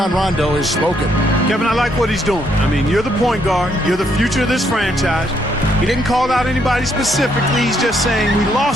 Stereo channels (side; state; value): both; normal; correlation 0.73